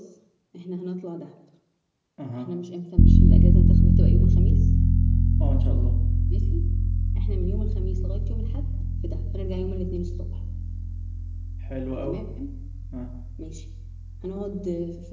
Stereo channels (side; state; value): both; identical; correlation 1.00